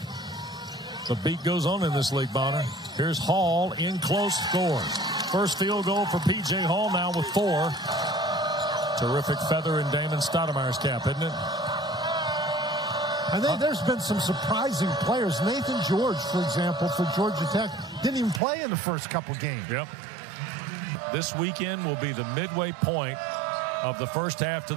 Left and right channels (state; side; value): drops out; left; at 18.4 s